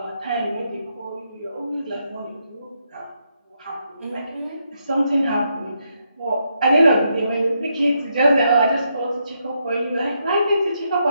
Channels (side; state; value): both; inverted; correlation -0.80